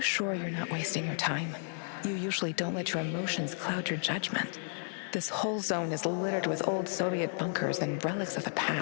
you're not wasting your time? You usually don't let your emotions cloud your judgment. This whole zone is littered with old Soviet bunkers and relics of the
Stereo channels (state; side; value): silent; right; digital silence